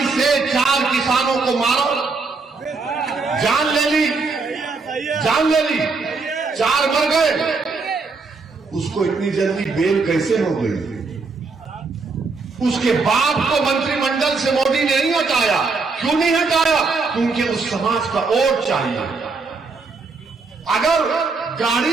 से 4 किसानों को मारो, जान ले ली, 4 मर गए। उसको इतनी जल्दी बेल कैसे हो गई? उसके बाप को मंत्रिमंडल से मोदी ने नहीं हटाया। क्यों नहीं हटाया? क्योंकि उस समाज का वोट चाहिए। अगर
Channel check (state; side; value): quieter; left; 4.2 dB